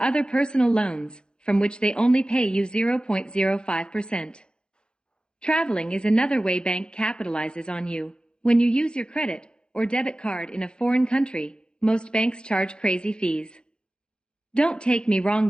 other personal loans, from which they only pay you 0.05%. Traveling is another way bank capitalizes on you. When you use your credit or debit card in a foreign country, most banks charge crazy fees. Don't take me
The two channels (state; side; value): late; right; 0.048 ms